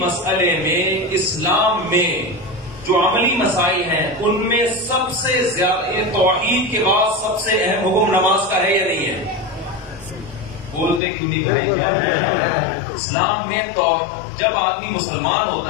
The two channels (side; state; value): right; drops out; at 11.0 s